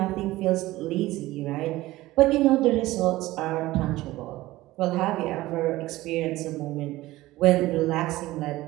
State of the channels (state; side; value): quieter; left; 17.6 dB